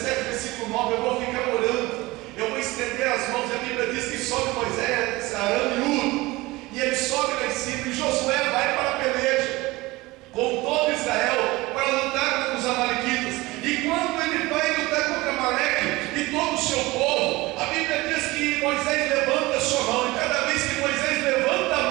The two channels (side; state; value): left; quieter; 20.8 dB